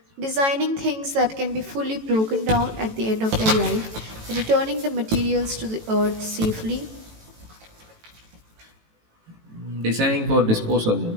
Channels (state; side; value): late; left; 18 ms